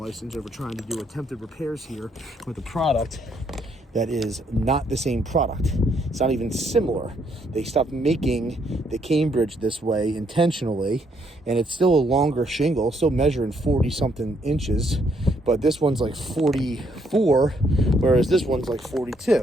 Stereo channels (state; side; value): normal; both; correlation 0.72